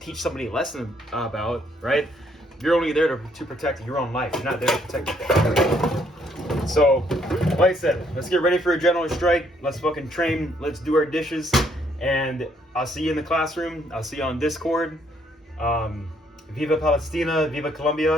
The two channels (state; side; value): normal; both; correlation 0.69